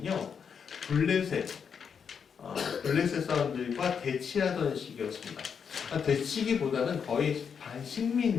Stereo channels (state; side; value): quieter; right; 6.8 dB